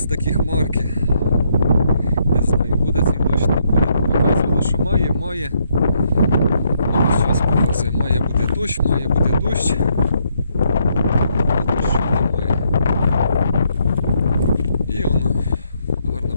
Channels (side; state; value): both; inverted; correlation -0.73